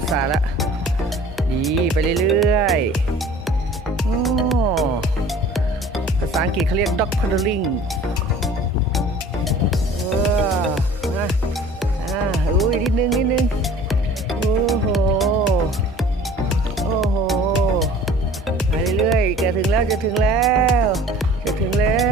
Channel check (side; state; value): both; normal; correlation 0.47